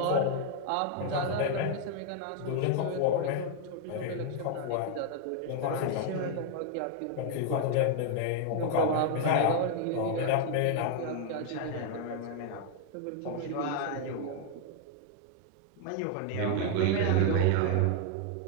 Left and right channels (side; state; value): both; different; correlation 0.00